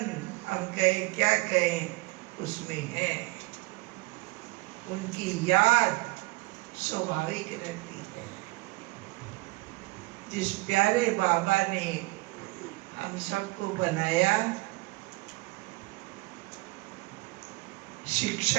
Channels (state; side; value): quieter; left; 23.8 dB